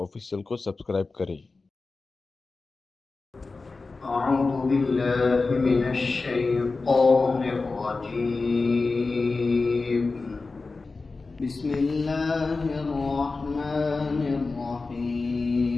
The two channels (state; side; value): quieter; right; 3.8 dB